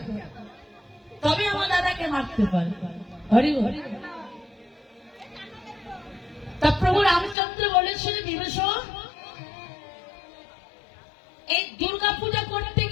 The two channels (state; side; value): drops out; right; at 7.4 s